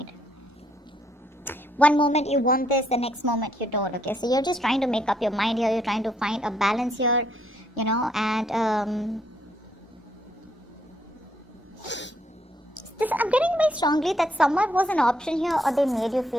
One moment you want this, the next moment you don't, okay? So you're just trying to make up your mind here. You're trying to find a balance here, you know, and I'm getting very strongly that someone was an option here or they made you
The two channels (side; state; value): both; normal; correlation 0.72